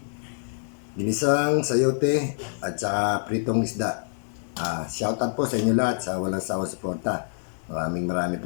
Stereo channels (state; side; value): silent; right; 61 dB below the other